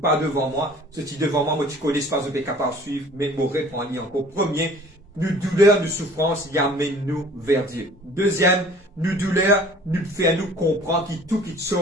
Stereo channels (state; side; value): normal; both; correlation 0.50